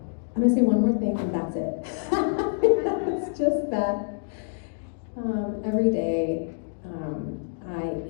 gonna say one more thing and that's it. It's just that every day I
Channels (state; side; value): silent; right; digital silence